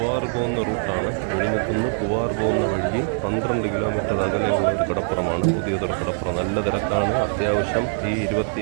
പോകുന്ന റൂട്ടാണ്. വിഴിഞ്ഞത്തുനിന്ന് പൂവാർ പോകുന്ന വഴിയിൽ 12 കിലോമീറ്റർ അകലെയുള്ള ഒരു കടപ്പുറമാണ് പുതിയതുറ കടപ്പുറം. നല്ല തിരക്കാണ്. അത്യാവശ്യം ഈ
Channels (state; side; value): silent; left; digital silence